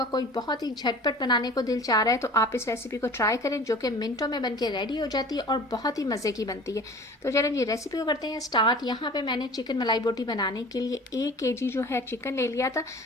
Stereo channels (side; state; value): both; normal; correlation 0.42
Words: कोई बहुत ही झटपट बनाने को दिल चाह रहा है तो आप इस रेसिपी को ट्राई करें, जो कि मिनटों में बनके रेडी हो जाती है और बहुत ही मज़े की बनती है। तो चलें जी रेसिपी को करते हैं स्टार्ट। यहाँ पर मैंने चिकन मलाई बोटी बनाने के लिए 1 kg जो है चिकन ले लिया था,